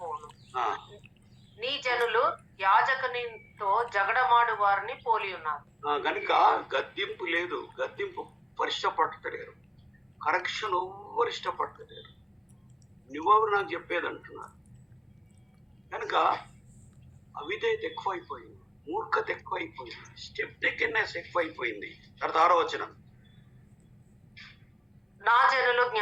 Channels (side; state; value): both; identical; correlation 1.00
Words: నీ జనులు యాజకునితో జగడమాడు వారిని పోలి ఉన్నారు. గనుక గద్దింపు లేదు, గద్దింపు ఇష్టపడతలేరు, కరెక్షన్ ఎవ్వరు ఇష్టపడతలేరు. నువ్వెవరు నాకు చెప్పేది అంటున్నారు. కనుక అవిధేయత ఎక్కువైపోయింది, మూర్ఖత ఎక్కువైపోయింది, స్టెప్ టేకెన్నెస్ ఎక్కువైపోయింది. తర్వాత 6వ వచనం, నా జనులు